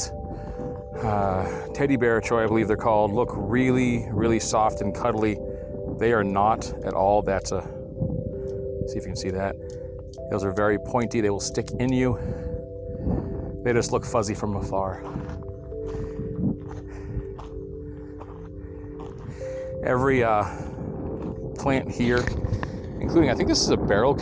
teddy bear choy, I believe they're called, look really, really soft and cuddly, they are not at all. That's a See if you can see that. Those are very pointy. They will stick in you. They just look fuzzy from afar. Every plant here, including, I think this is a barrel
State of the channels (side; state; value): both; identical; correlation 1.00